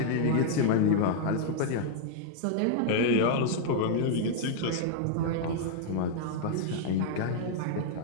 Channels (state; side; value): different; both; correlation -0.01